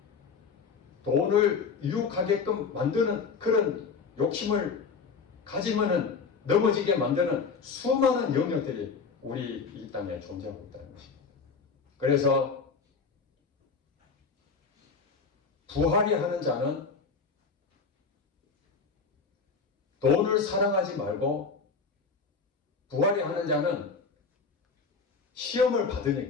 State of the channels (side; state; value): right; quieter; 5.1 dB